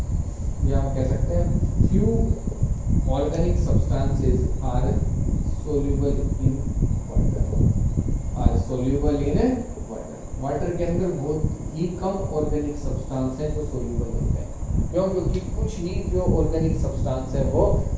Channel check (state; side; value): identical; both; correlation 1.00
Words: या हम कह सकते हैं few organic substances are soluble in water, are soluble in water. Water के अंदर बहुत ही कम ऑर्गेनिक सब्सटेंस है जो सोल्यूबल होते हैं। क्यों? क्योंकि कुछ ही जो ऑर्गेनिक सब्सटेंस है वो